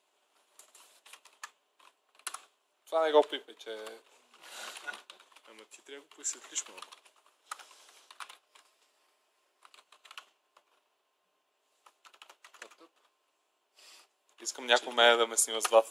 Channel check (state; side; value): identical; both; correlation 1.00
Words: Това не го пипе, че... Ама ти трябва да го посветлиш малко. Искам някой мене да ме снима с